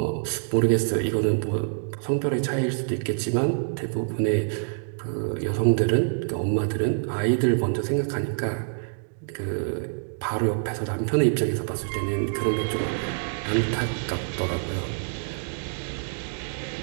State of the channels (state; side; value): silent; left; digital silence